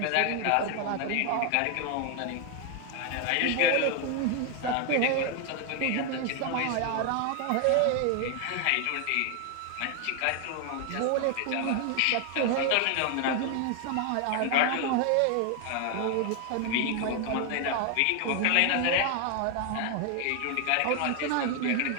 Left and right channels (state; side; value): different; both; correlation 0.00